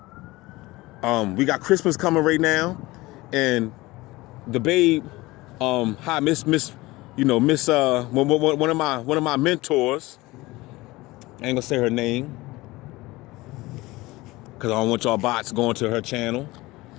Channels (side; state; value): right; quieter; 20.3 dB